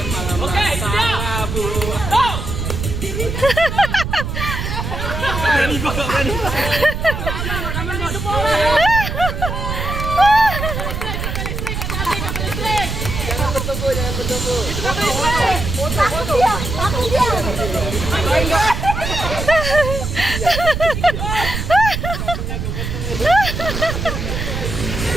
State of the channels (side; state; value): right; noise; rumble, 4 dB below the sound